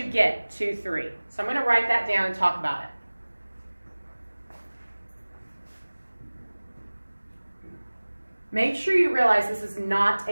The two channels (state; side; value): inverted; both; correlation -1.00